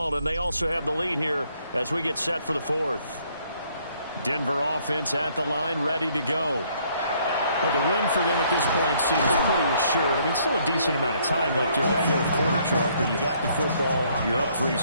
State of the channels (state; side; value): inverted; both; correlation -0.66